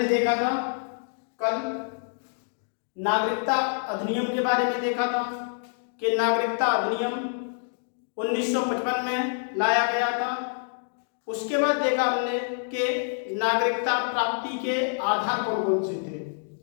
देखा था कल नागरिकता अधिनियम के बारे में देखा था कि नागरिकता अधिनियम 1955 में लाया गया था। उसके बाद देखा हमने कि नागरिकता प्राप्ति के आधार कौन कौन से थे,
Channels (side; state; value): right; silent; digital silence